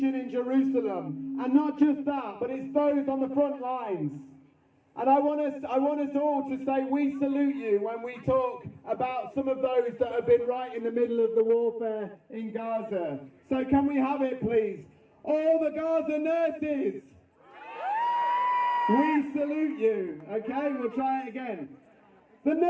in Jerusalem, and not just that, but it's those on the front lines. And I want us all to say we salute you when we talk about some of those that have been right in the middle of the warfare in Gaza. So can we have it, please? All the Gaza nurses, we salute you. Okay, we'll try it again. The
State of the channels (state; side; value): identical; both; correlation 1.00